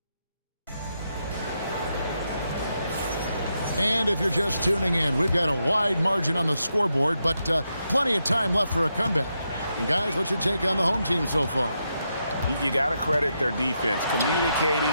And if you're just tuning in, we've got a wide margin on the scoreboard, but plenty of time left for a comeback. And guys, what's your take on the home team so far? You got to credit their defense,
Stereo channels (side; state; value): both; inverted; correlation -0.83